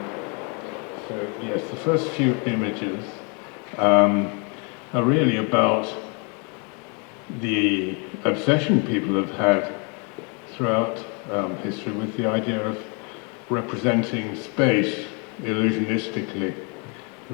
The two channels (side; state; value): right; quieter; 34.5 dB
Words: so yes, the first few images are really about the obsession people have had throughout history with the idea of representing space illusionistically,